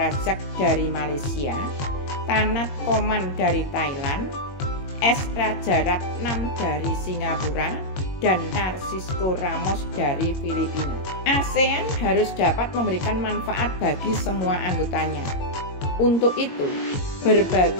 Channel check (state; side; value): late; right; 21 ms